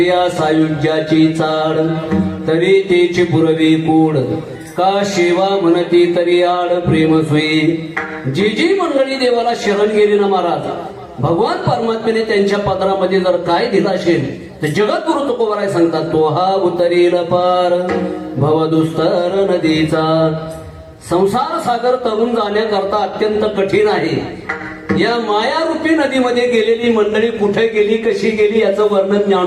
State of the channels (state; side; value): identical; both; correlation 1.00